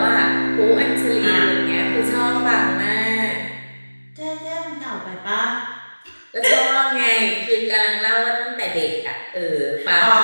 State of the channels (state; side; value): inverted; both; correlation -1.00